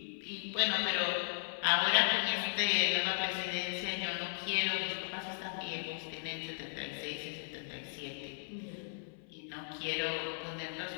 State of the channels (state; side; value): silent; right; 54 dB below the other